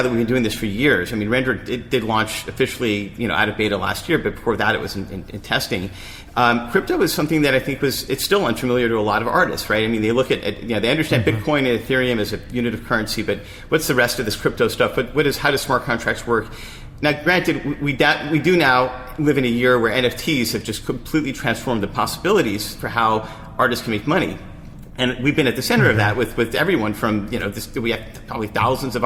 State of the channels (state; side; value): identical; both; correlation 1.00